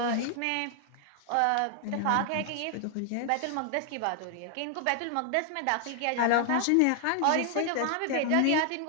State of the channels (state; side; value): different; both; correlation 0.00